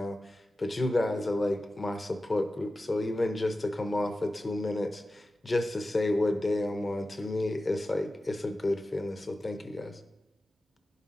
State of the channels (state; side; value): normal; both; correlation 0.94